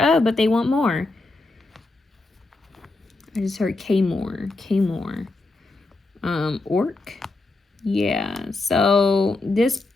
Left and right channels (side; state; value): right; quieter; 3.1 dB